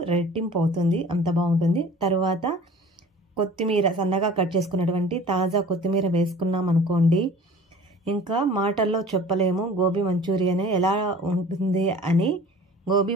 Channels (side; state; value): both; normal; correlation 0.45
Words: రెట్టింపు అవుతుంది, అంత బాగుంటుంది. తర్వాత కొత్తిమీర సన్నగా కట్ చేసుకున్నటువంటి తాజా కొత్తిమీర వేసుకున్నాం అనుకోండి, ఇంకా మాటల్లో చెప్పలేము గోబీ మంచూరియన్ ఎలా ఉంటుంది అని. గోబీ